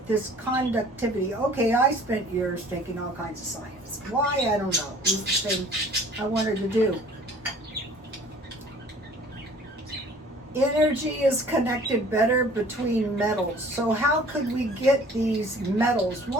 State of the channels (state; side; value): normal; both; correlation 0.51